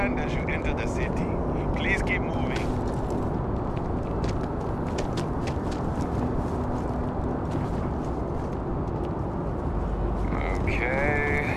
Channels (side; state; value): both; identical; correlation 1.00